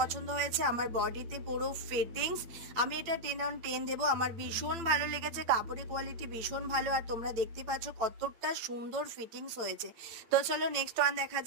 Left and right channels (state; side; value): late; left; 8.6 ms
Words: হয়েছে। আমার বডিতে পুরো ফিটিংস, আমি এটা 10/10 দেবো। আমার ভীষণ ভালো লেগেছে, কাপড়ের কোয়ালিটি ভীষণ ভালো, আর তোমরা দেখতে পাচ্ছ কতটা সুন্দর ফিটিংস হয়েছে। তো চলো নেক্সট ওয়ান দেখা